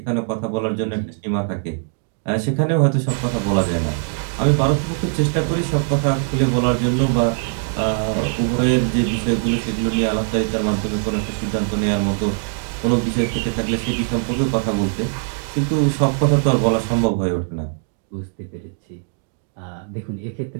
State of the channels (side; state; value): left; silent; digital silence